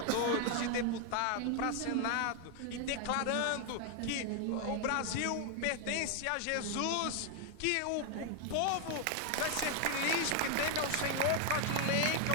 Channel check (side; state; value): both; different; correlation 0.00